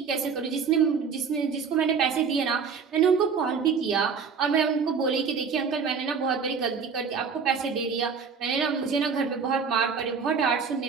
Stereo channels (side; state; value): left; quieter; 5.8 dB